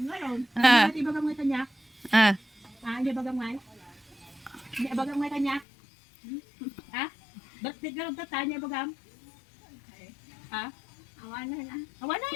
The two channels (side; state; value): right; drops out; at 5.7 s